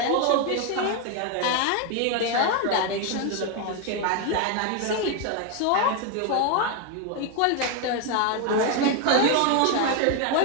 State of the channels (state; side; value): different; both; correlation 0.01